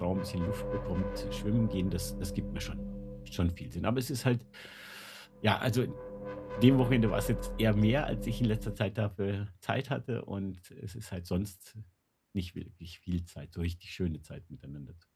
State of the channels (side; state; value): both; identical; correlation 1.00